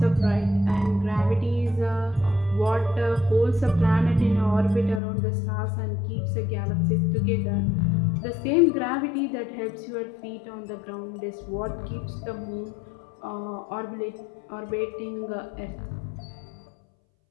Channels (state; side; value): drops out; right; at 5.0 s